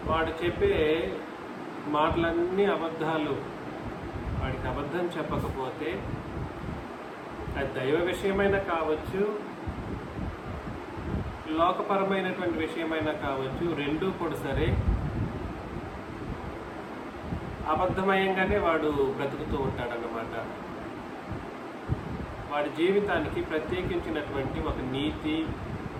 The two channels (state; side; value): identical; both; correlation 1.00